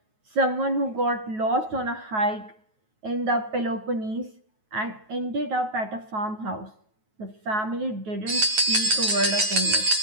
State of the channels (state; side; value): late; left; 9.3 ms